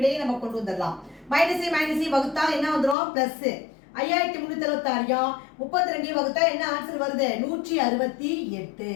நம்ம கொண்டு வந்துடலாம். மைனஸை வகுத்தால் என்ன வந்துடும், பிளஸ் 5376 32 வகுத்தா என்ன ஆன்சர் வருது, 168.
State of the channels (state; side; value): drops out; right; at 3.0 s